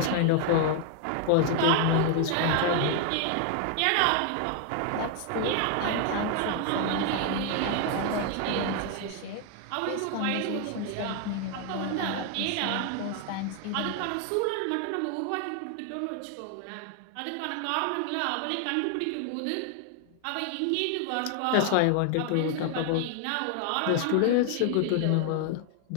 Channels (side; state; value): both; different; correlation 0.00